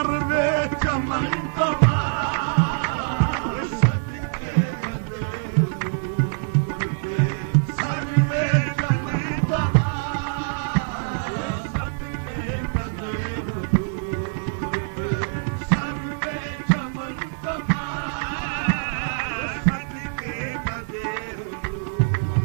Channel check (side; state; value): left; silent; digital silence